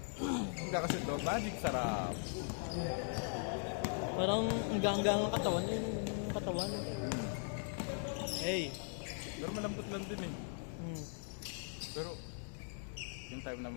Hindi kasi ito. Magic sarap. Parang hanggang ang katawan. Yung katawan. Hey! Pero malambot lang din eh. Hmm. Pero yung time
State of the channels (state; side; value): silent; right; 51 dB below the other